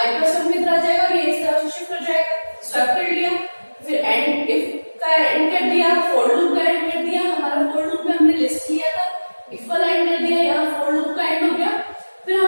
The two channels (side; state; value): both; inverted; correlation -1.00